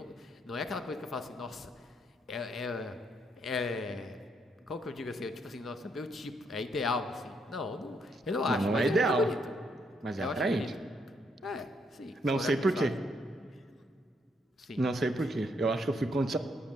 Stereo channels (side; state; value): both; normal; correlation 0.74